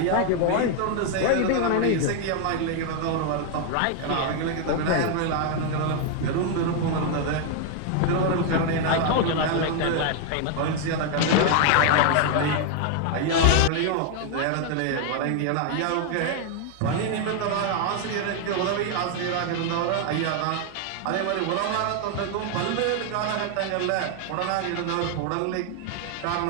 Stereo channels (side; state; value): both; different; correlation 0.00